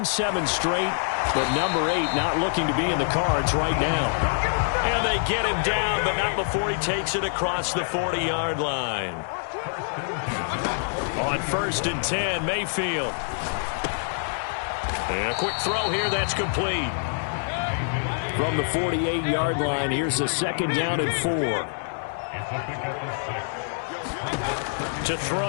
7 straight, but number 8 not looking to be in the cards right now. And they get him down, but not before he takes it across the 40-yard line. On 1st and 10, Mayfield. And a quick throw here, that's complete. From the 48-yard line, here's a 2nd down and 4. To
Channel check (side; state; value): right; silent; digital silence